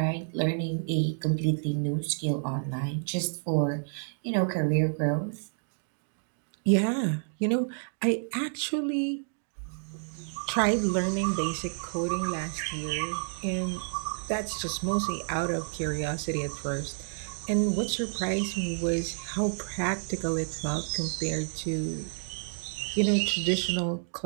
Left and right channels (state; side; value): silent; left; digital silence